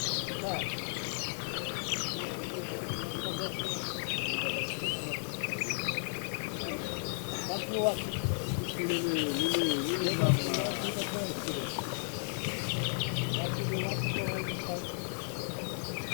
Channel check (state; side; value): silent; right; digital silence